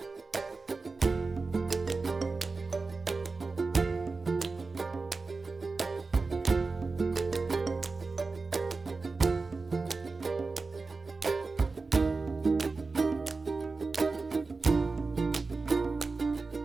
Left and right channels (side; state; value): left; quieter; 4.0 dB